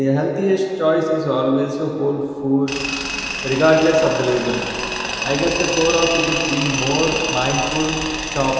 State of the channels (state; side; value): identical; both; correlation 1.00